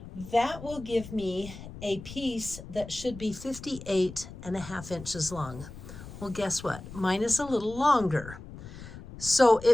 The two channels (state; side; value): noise; left; rumble, 14 dB below the sound